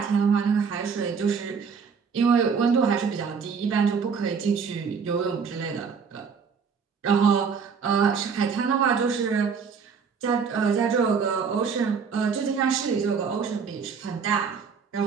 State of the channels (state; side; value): quieter; left; 6.0 dB